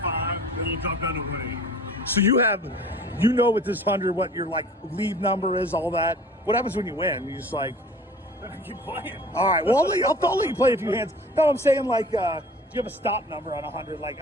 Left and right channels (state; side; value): normal; both; correlation 0.45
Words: then it'll drop down to 180. So with this 100 what your like lead number is, all that. What happens when you win? You just like, I keep playing. all right. Well, I'll let you play a few hands. No, I'm saying like, do you have a stop number on 100? Like,